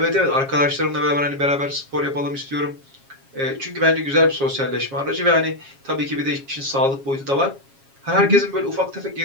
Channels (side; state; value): left; late; 7.3 ms